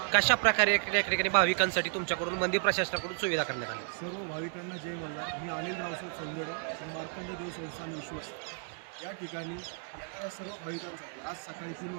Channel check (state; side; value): silent; left; 56 dB below the other